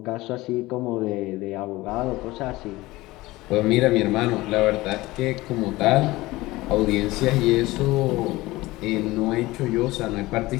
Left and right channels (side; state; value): right; quieter; 19.4 dB